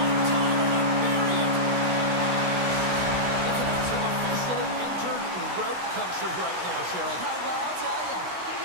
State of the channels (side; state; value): left; late; 16 ms